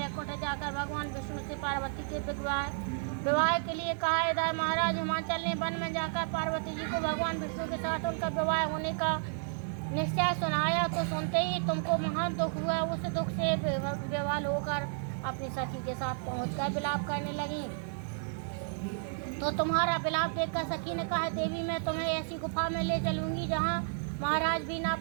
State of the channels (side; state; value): left; silent; digital silence